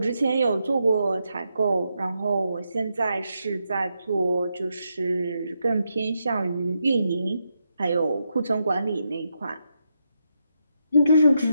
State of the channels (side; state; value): both; inverted; correlation -0.83